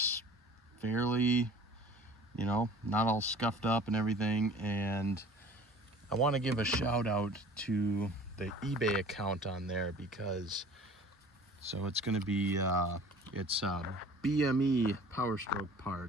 fairly, you know, not all scuffed up and everything. And I want to give a shout out to the eBay account on there, because so it's going to be it's BME Power Stroke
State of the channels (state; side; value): normal; both; correlation 0.46